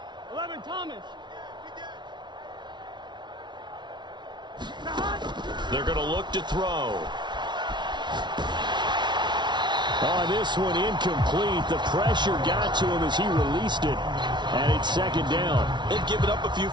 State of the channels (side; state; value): left; late; 0.22 ms